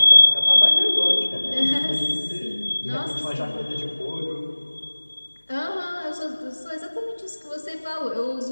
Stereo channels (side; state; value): both; inverted; correlation -1.00